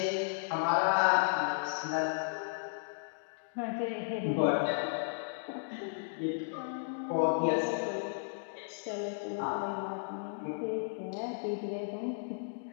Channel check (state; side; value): silent; right; digital silence